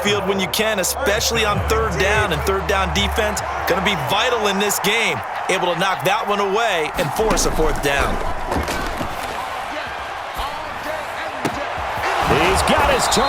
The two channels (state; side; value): identical; both; correlation 1.00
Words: when you can, especially on third down. And third down defense going to be vital in this game. Able to knock that one away and force a fourth down. He's got his